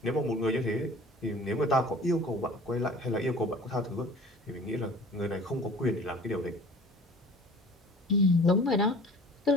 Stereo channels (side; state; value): both; normal; correlation 0.46